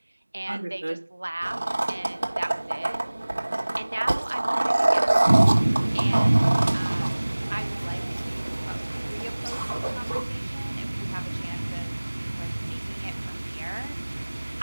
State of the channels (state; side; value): inverted; both; correlation -1.00